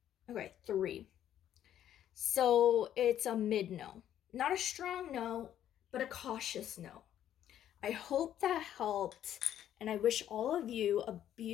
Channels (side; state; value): right; quieter; 11.0 dB